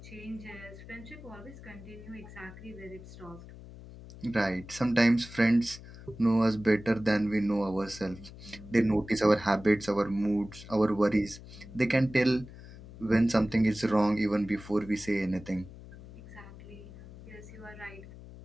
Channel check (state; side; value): noise; left; hum, 16 dB below the sound